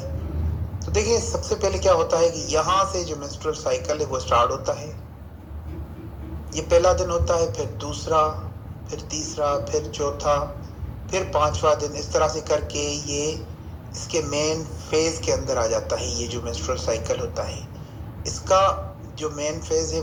तो देखिए, सबसे पहले क्या होता है कि यहाँ से जो मिस्टर साइकिल है वो स्टार्ट होता है। ये पहला दिन होता है, फिर दूसरा, फिर तीसरा, फिर चौथा, फिर पांचवा दिन, इस तरह से करके ये इसके मेन फेज के अंदर आ जाता है। ये जो मेंस्ट्रुअल साइकिल होता है, इसका जो मेन फेज है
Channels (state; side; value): identical; both; correlation 1.00